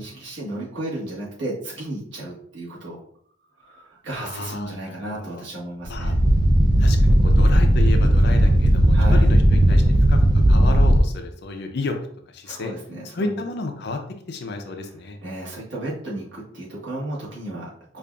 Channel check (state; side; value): normal; both; correlation 0.92